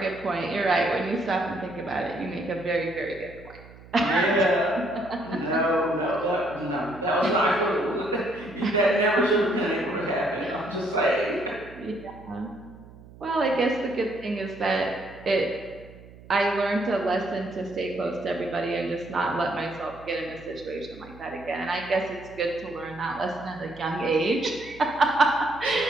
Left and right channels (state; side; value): noise; right; hum, 20 dB below the sound